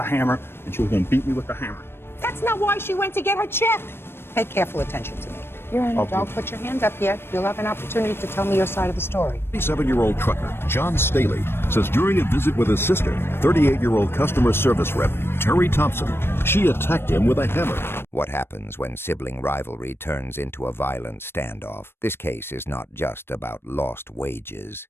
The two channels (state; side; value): late; right; 0.11 ms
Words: hammer, and she was going to beat me with the hammer. That's not why she went to get her check. Pay careful attention to me. Your Honor, Okay. don't put your hand up yet. You'll have an opportunity to tell me your side of the story. 37-year-old trucker John Staley says during a visit with his sister, 38-year-old customer service rep Terry Thompson, she attacked him with a hammer. What happens when sibling rivalry turns into a violent standoff? This case is not just about lost wages.